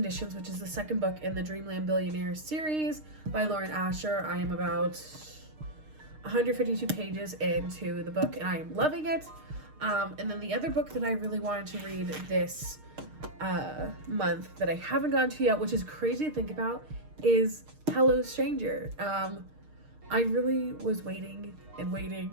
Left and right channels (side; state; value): left; late; 6.5 ms